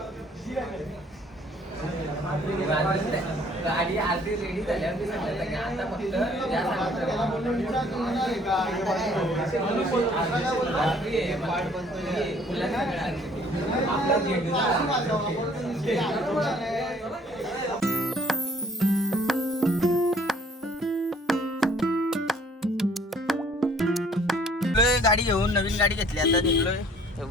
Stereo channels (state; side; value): normal; both; correlation 0.58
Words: गाडी आधी रेडी झाल्यावर आता गाडी घेऊन नवीन गाडी घेतली. आता